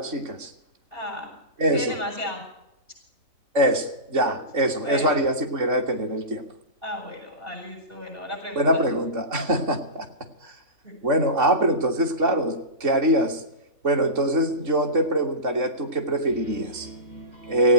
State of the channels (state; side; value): late; left; 3.5 ms